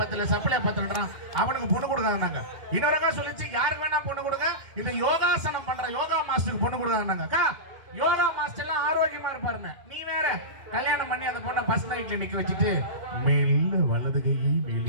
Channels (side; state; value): left; late; 2.1 ms